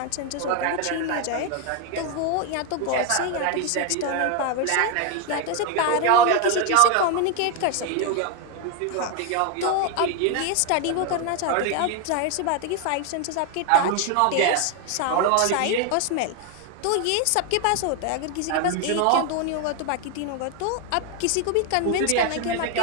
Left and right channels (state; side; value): different; both; correlation 0.01